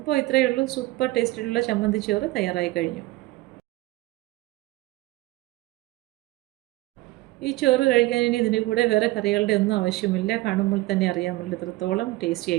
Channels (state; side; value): quieter; left; 19.4 dB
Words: ഇത്രയേ ഉള്ളൂ, സൂപ്പർ ടേസ്റ്റിലുള്ള ചമ്മന്തി ചോറ് തയ്യാറായി കഴിഞ്ഞു. ഈ ചോറ് കഴിക്കാൻ ഇനി ഇതിൻ്റെ കൂടെ വേറെ കറികളുടെ ഒന്നും ആവശ്യമില്ല. കാണുമ്പോൾ തന്നെ അറിയാമല്ലോ എത്രത്തോളം ടേസ്റ്റി